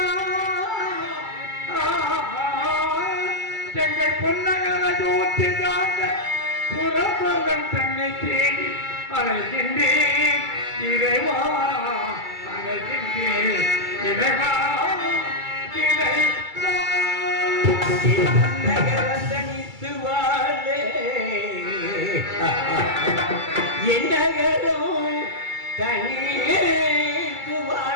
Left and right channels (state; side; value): late; left; 2.3 ms